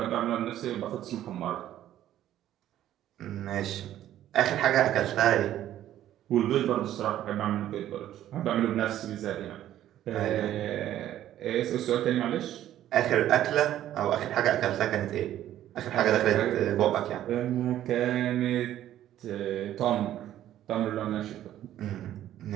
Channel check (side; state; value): left; quieter; 12.3 dB